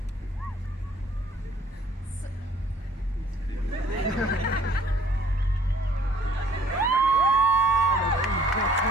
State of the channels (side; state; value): both; normal; correlation 0.57